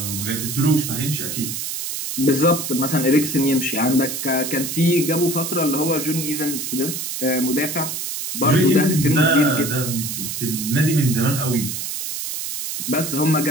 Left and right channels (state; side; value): noise; right; hiss, 5 dB below the sound